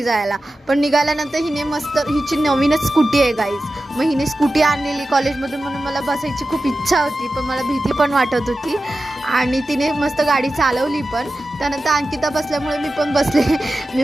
जायला. पण निघाल्यानंतर हिने मस्त, हिची नवीनच स्कूटी आहे गाईज. मग हिने स्कूटी आणलेली कॉलेजमधून म्हणून मला बसायची खूप इच्छा होती, पण मला भीती पण वाटत होती. आणि तिने मस्त गाडी चालवली पण. त्यानंतर अंकिता बसल्यामुळे मी पण बसले.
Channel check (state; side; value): normal; both; correlation 0.94